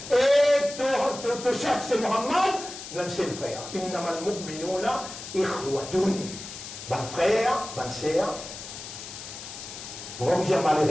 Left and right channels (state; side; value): noise; left; hiss, 11 dB below the sound